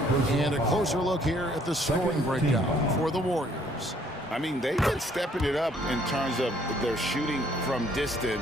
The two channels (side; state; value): both; normal; correlation 0.63